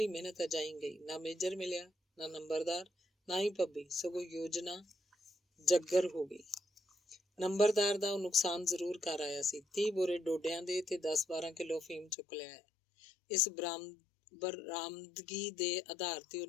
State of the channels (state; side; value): drops out; right; at 12.1 s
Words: ਮਿਹਨਤ ਅਜਾਈ ਗਈ। ਨਾ ਮੇਜਰ ਮਿਲਿਆ, ਨਾ ਨੰਬਰਦਾਰ, ਨਾ ਹੀ ਪੱਬੀ। ਸਗੋਂ ਯੋਜਨਾ ਜੱਗਰ ਹੋ ਗਈ। ਨੰਬਰਦਾਰ ਦਾ ਉਹ ਨੁਕਸਾਨ ਜ਼ਰੂਰ ਕਰ ਆਇਆ ਸੀ। 30 ਬੋਰੇ ਡੋਡਿਆਂ ਦੇ ਤੇ 10-12 ਕਿਲੋ ਅਫੀਮ ਚੁੱਕ ਲਿਆ ਹੈ। ਇਸ ਬਰਾਮਦਗੀ ਦੇ ਆਧਾਰ ਤੇ ਉਹ